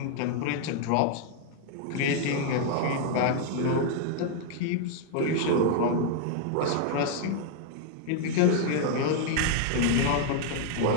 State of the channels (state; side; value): different; both; correlation 0.00